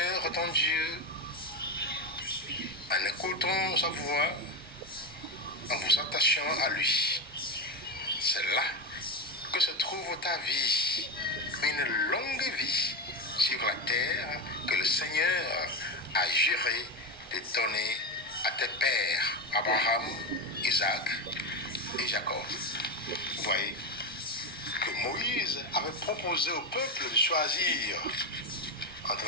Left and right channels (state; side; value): normal; both; correlation 0.15